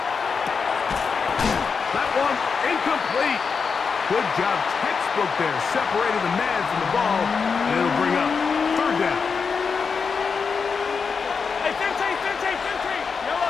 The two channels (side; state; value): right; quieter; 5.5 dB